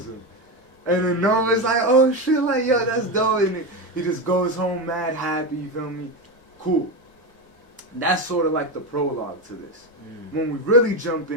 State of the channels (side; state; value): both; normal; correlation 0.15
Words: him. And then Nova's like, oh shit, like, yo, that's dope. And he just goes home mad happy, you feel me? Cool. That's sort of like the prologue to this. When we really jump